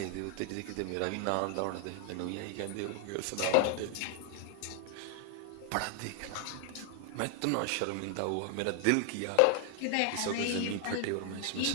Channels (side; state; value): both; different; correlation 0.00